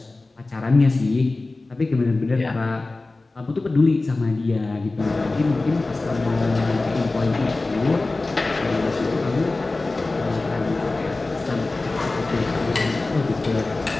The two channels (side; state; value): right; quieter; 3.2 dB